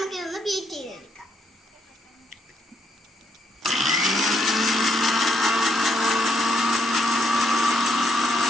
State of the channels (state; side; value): normal; both; correlation 0.75